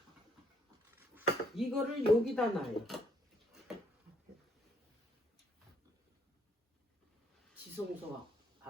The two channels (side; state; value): both; normal; correlation 0.69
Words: 이거를 여기다 놔요. 지성소